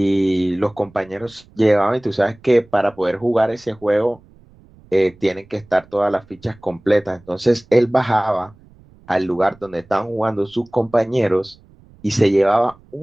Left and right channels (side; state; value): right; noise; rumble, 27 dB below the sound